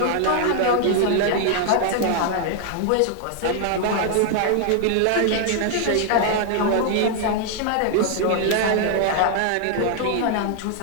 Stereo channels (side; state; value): both; different; correlation 0.00